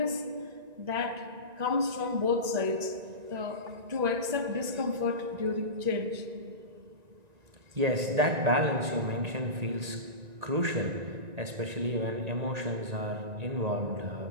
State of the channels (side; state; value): left; late; 1.9 ms